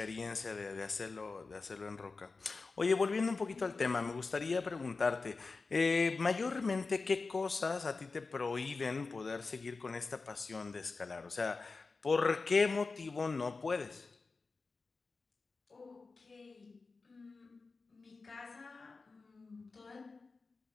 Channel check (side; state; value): right; quieter; 4.1 dB